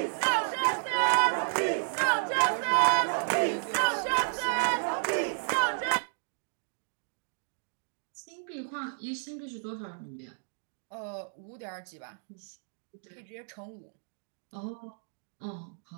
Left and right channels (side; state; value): left; silent; digital silence